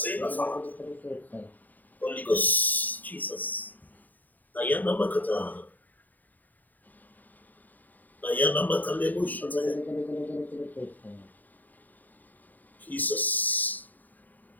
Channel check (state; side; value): late; right; 0.084 ms